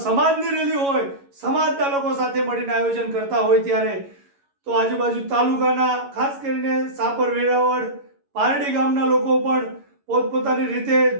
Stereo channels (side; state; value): left; late; 11 ms